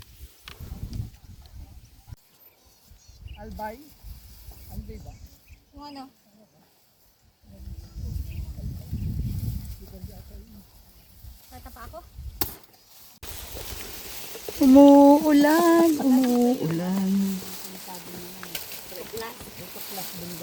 Albay? Albay ba? Yung ano? Kata pa ako? Umuulan, umuulan.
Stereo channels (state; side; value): identical; both; correlation 1.00